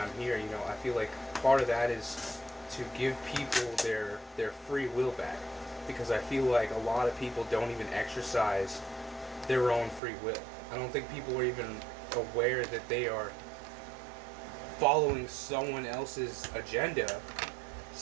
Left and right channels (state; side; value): drops out; left; at 10.0 s